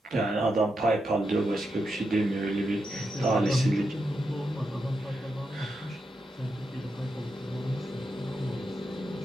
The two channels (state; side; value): normal; both; correlation 0.85